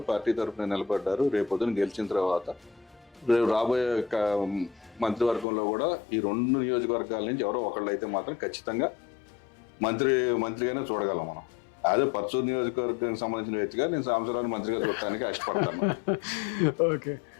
పార్టీ తరఫున నిలబడ్డారు. రేపొద్దున గెలిచిన తర్వాత రాబోయే మంత్రివర్గంలో కూడా ఈ 2 నియోజకవర్గాల నుంచి ఎవరో ఒకళ్ళు అయితే మాత్రం ఖచ్చితంగా మంత్రిగానే చూడగలం మనం. అదే పర్చూరు నియోజకవర్గానికి సంబంధించిన వ్యక్తిగా నేను సాంబశివరావుని మంత్రిగా చూడటానికి ఇష్టపడతాను. ఓకే.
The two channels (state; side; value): drops out; right; at 5.5 s